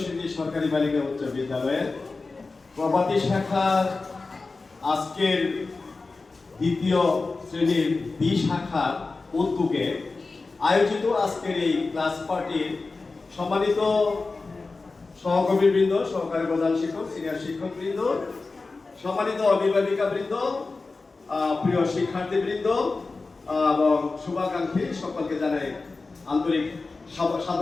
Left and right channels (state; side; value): quieter; right; 3.8 dB